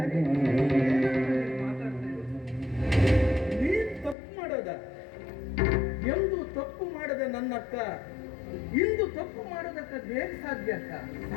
ನೀನ್ ತಪ್ಪು ಮಾಡೋದ? ಎಂದು ತಪ್ಪು ಮಾಡದ ನನ್ನಕ್ಕ ಇಂದು ತಪ್ಪು ಮಾಡೋದಕ್ಕೆ ಹೇಗೆ ಸಾಧ್ಯ ಅಕ್ಕ?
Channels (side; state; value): right; drops out; at 4.2 s